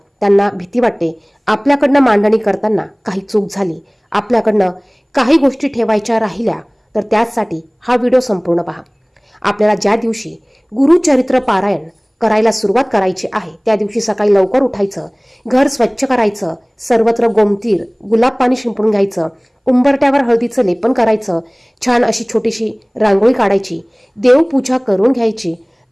त्यांना भीती वाटते आपल्याकडनं मांडणी करताना काही चूक झाली, आपल्याकडनं काही गोष्टी ठेवायच्या राहिल्या, तर त्यासाठी हा व्हिडिओ संपूर्ण पहा. आपल्याला ज्या दिवशी गुरुचरित्र पारायण करायला सुरुवात करायची आहे त्या दिवशी सकाळी लवकर उठायचं, घर स्वच्छ करायचं, सर्वत्र गोमतीर गुलाब पाणी शिंपडून घ्यायचं, उंबरट्यावर हळदीचं लेपन करायचं, छान अशी छोटीशी रांगोळी काढायची, देवपूजा करून घ्यायची.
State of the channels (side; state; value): both; identical; correlation 1.00